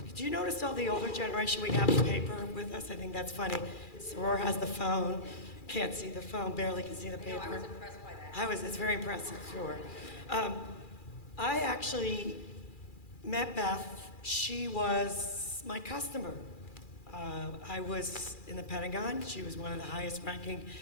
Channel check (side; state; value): right; late; 2.4 ms